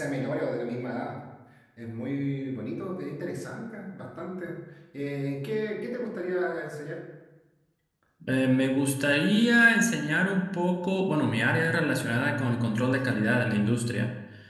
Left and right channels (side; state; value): both; identical; correlation 1.00